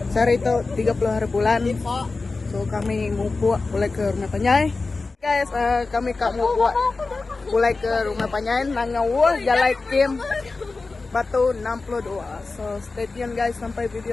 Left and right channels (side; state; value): right; quieter; 3.8 dB